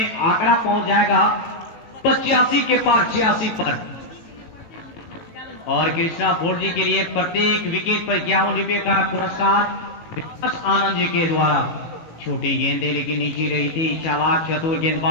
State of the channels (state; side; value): late; right; 18 ms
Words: आंकड़ा पहुंच जाएगा 85 के पार 86 पर। और कृष्णा 4G के लिए प्रत्येक विकेट पर 51 रुपये का पुरस्कार आनंद जी के द्वारा। छोटी गेंदें लेकिन नीचे रही थी, चालाक चतुर